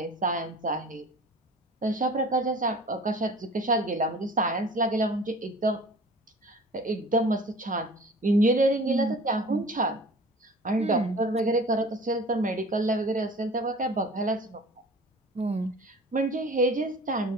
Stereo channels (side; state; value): both; normal; correlation 0.43